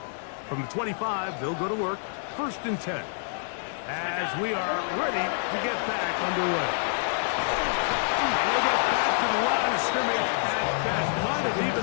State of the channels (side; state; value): right; silent; digital silence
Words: From the 25, they'll go to work. 1st and 10. As we are ready to get back underway. And he'll get back to the line of scrimmage at best. Might have